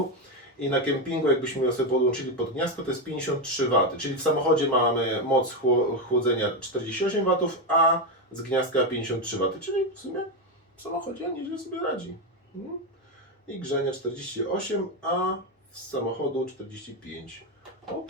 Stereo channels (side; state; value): both; normal; correlation 0.09